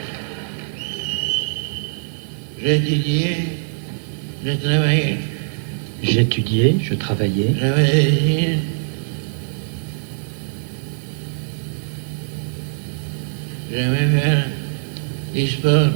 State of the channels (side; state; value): left; silent; digital silence